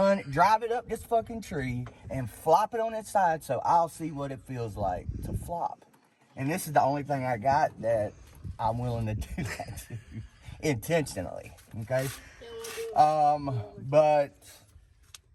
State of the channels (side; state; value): both; identical; correlation 1.00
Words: it up this fucking tree, and flop it on its side so I'll see what it feels like to flop. And this is the only thing I got that I'm willing to do that to, intentionally, okay? But